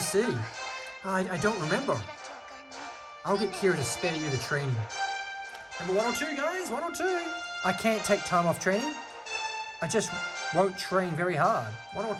I don't remember. I'll get Kira to spare you the training. Number 1 or 2, guys. 1 or 2. I can't take time off training. I just won't train very hard. 1 or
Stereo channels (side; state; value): both; identical; correlation 1.00